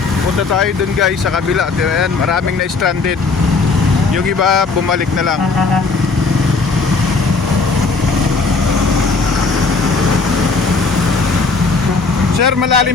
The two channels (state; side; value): quieter; right; 4.1 dB